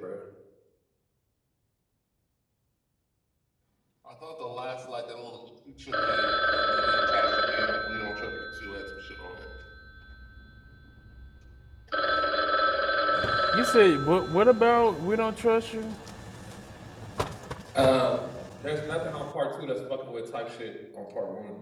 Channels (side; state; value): both; identical; correlation 1.00